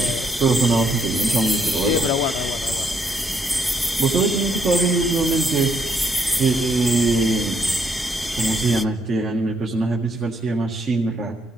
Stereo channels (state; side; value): normal; both; correlation 0.73